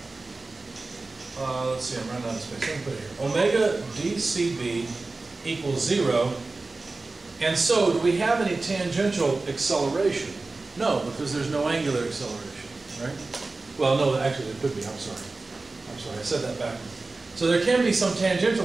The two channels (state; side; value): quieter; left; 3.5 dB